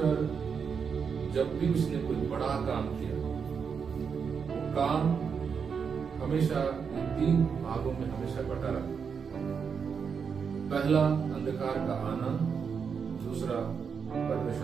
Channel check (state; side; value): quieter; left; 6.3 dB